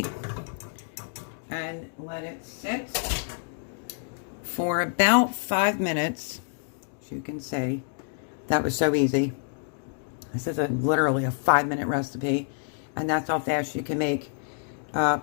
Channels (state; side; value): silent; right; digital silence